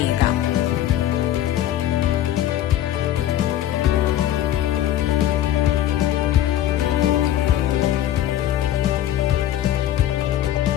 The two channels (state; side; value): quieter; right; 12.2 dB